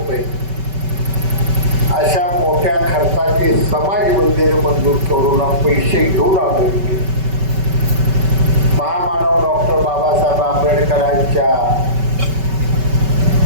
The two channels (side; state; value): left; late; 5.2 ms